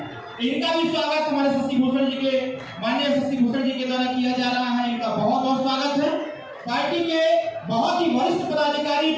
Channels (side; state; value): both; identical; correlation 1.00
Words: इनका भी स्वागत हमारे शशि भूषण जी के माननीय शशि भूषण जी के द्वारा किया जा रहा है। इनका बहुत बहुत स्वागत है। पार्टी के बहुत ही वरिष्ठ पदाधिकारी,